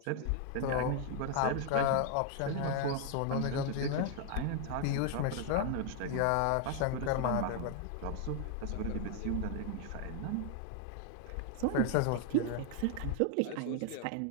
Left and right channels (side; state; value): both; different; correlation 0.00